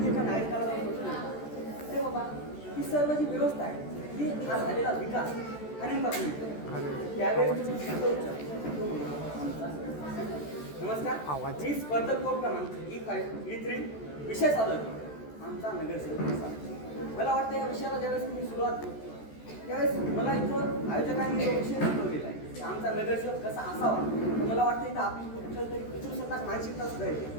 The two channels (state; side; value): late; right; 14 ms